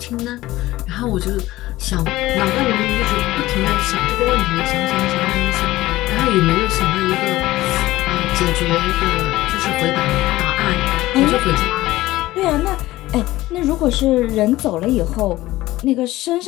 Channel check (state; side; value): quieter; right; 17.0 dB